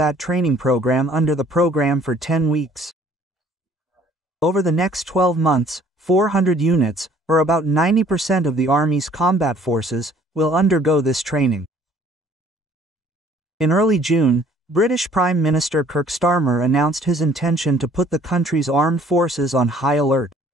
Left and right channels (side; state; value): both; normal; correlation 0.57